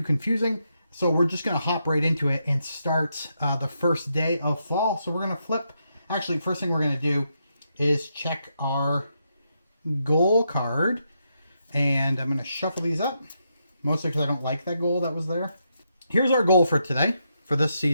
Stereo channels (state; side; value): inverted; both; correlation -0.81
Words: confusing. So we're just going to hop right into it and start the first day of fall. So we're going to flip. Actually, first thing we're going to do is check our goal card. And I'm going to shuffle these up. Mostly because I don't like that goal that was there. Here's our goal for today, for this